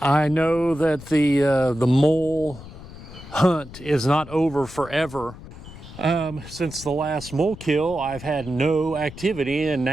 I know that the mole hunt is not over forever. Since the last mole kill, I've had no activity, and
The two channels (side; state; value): left; noise; rumble, 15 dB below the sound